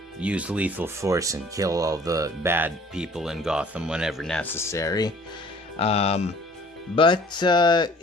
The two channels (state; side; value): normal; both; correlation 0.52